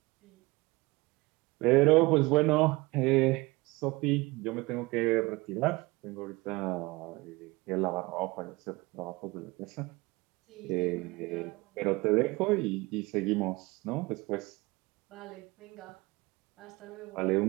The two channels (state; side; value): quieter; left; 23.0 dB